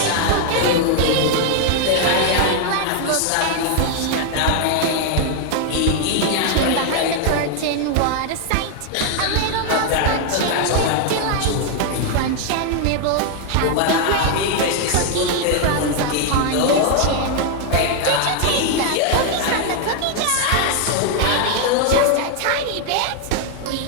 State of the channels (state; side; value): different; both; correlation 0.00